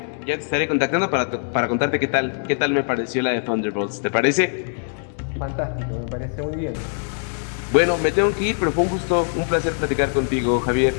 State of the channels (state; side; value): silent; right; digital silence